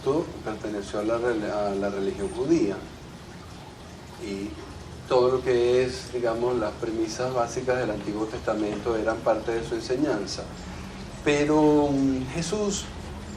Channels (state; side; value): identical; both; correlation 1.00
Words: perteneció a la religión judía y todo lo que es, digamos, las premisas básicas del Antiguo Testamento eran parte de su enseñanza. Pero Jesús,